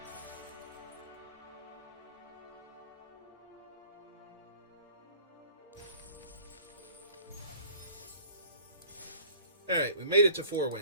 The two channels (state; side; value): inverted; both; correlation -0.48